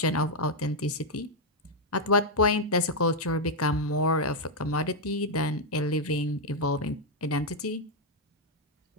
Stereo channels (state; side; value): normal; both; correlation -0.01